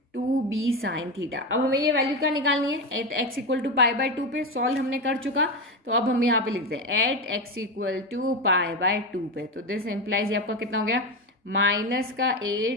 2b sine theta. अब हमें ये वैल्यू क्या निकालनी है, एट x इक्वल टू π/2 पे, सॉल्व हमने कर चुका। तो अब हम यहाँ पे लिखते हैं एट x इक्वल टू π/2 पे। तो दिस इम्प्लाइज ये आपका कितना हो गया, माइनस का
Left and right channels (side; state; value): both; normal; correlation 0.16